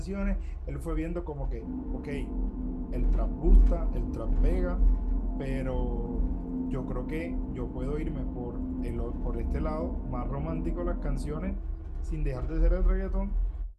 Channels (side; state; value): both; identical; correlation 1.00